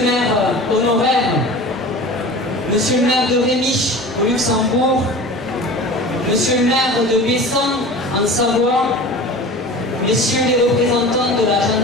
maire honoraire, monsieur le maire de Rémiche au Luxembourg, monsieur le maire de Bessan en Savoie, messieurs les représentants de la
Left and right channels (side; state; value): both; normal; correlation 0.37